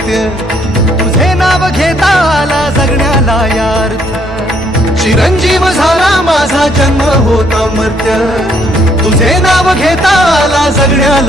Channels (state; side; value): normal; both; correlation 0.68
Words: तुझे नाव घेता आला जगण्याला यार्थ, चिरंजीव झाला माझा जन्म होता मर्त्य, तुझे नाव घेता आला